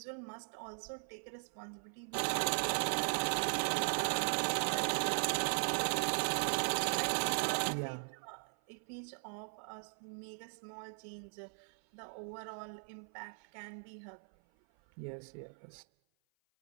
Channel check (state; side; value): silent; left; 52 dB below the other